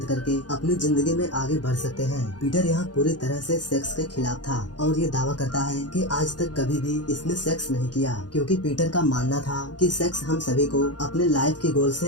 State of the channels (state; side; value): late; right; 0.69 ms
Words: करके अपनी जिंदगी में आगे बढ़ सकते हैं। पीटर यहाँ पूरी तरह से सेक्स के खिलाफ था और ये दावा करता है कि आज तक कभी भी इसने सेक्स नहीं किया, क्योंकि पीटर का मानना था कि सेक्स हम सभी को अपने लाइफ के गोल